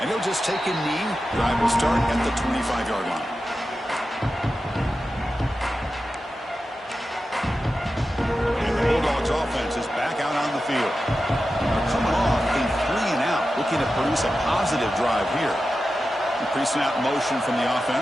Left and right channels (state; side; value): normal; both; correlation 0.92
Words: And he'll just take a knee. Drive will start at the 25-yard line. And the Bulldogs offense is back out on the field. They're coming off a 3-and-out, looking to produce a positive drive here. Increasing out motion from the